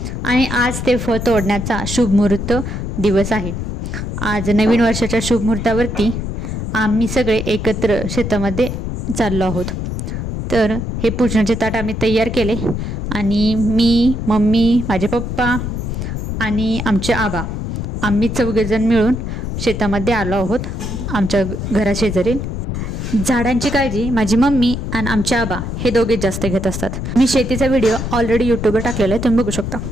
आणि आज ते फळ तोडण्याचा शुभमुहूर्त दिवस आहे। आज नवीन वर्षाच्या शुभमुहूर्तावरती आम्ही सगळे एकत्र शेतामध्ये चाललो आहोत। तर हे पूजनाचे ताट आम्ही तयार केले आणि मी, मम्मी, माझे पप्पा आणि आमचे आबा आम्ही चौघेजण मिळून शेतामध्ये आलो आहोत। आमच्या घराशेजारी झाडांची काळजी माझी मम्मी आणि आमचे आबा हे दोघे जास्त घेत असतात। मी शेतीचा व्हिडिओ ऑलरेडी यूट्यूबवर टाकलेला आहे, तुम्ही बघू शकता।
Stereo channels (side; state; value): left; noise; rumble, 4 dB below the sound